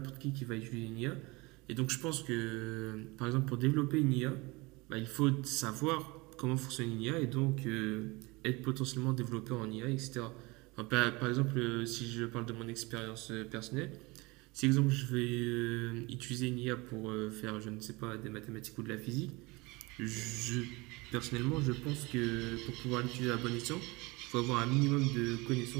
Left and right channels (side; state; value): left; quieter; 24.5 dB